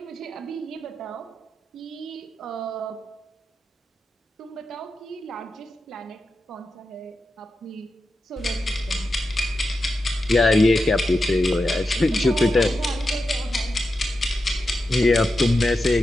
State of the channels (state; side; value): normal; both; correlation 0.90